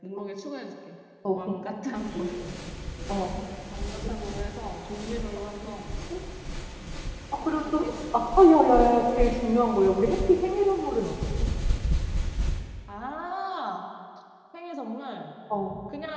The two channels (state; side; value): identical; both; correlation 1.00